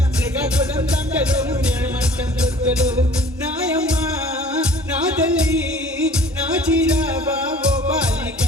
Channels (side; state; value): both; normal; correlation 0.49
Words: శ్రీకాకుళం దండలు నేమంటం దొక్కలు నాయమ్మ నా తల్లి నా చీరాబా ఓ బాలిక